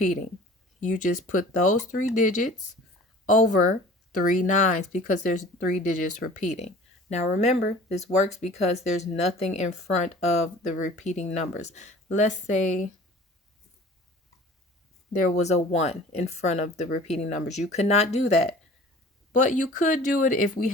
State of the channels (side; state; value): both; normal; correlation 0.45